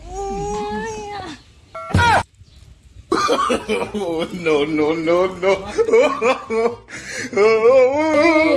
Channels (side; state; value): both; identical; correlation 1.00